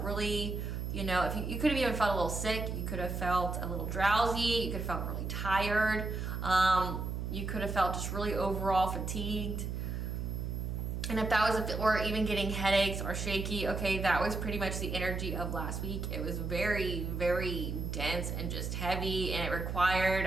really, if you could have even felt a little sick, you could have felt a little drowsy, you could have felt really tired, you could have felt just really overall fatigued. And if that was, or even getting headaches or shaky, okay, that was pretty much the energy of last week. It was very, very dense and just heavy, and it required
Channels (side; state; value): right; noise; hum, 3 dB below the sound